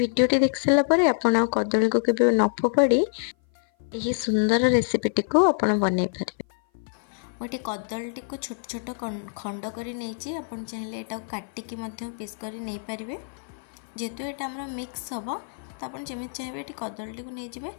देख सारा परे आपण कदली को केबे न फोपाड़ी यही सुंदर रेसिपीटी को आपण बनै पारे। गोटे कदलीटी को छोट छोट खंड कर नहीं आपन चाहिए एटा काटिकी पीस कर नहीं पारे। जेहेतु यहाँ आम मिक्स हम तो आप जमी चाहिए ये कदलीटी को नहीं जाए।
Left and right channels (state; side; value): silent; right; 56 dB below the other